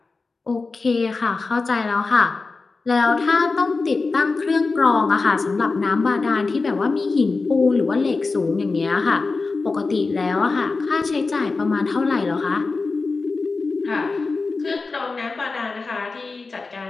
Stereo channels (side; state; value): right; quieter; 4.0 dB